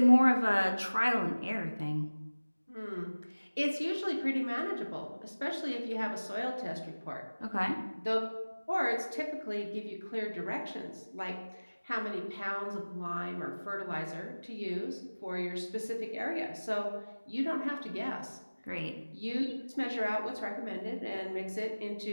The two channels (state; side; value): inverted; both; correlation -1.00